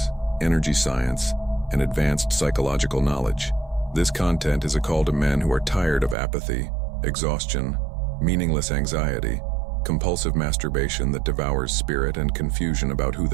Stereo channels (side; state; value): left; drops out; at 6.2 s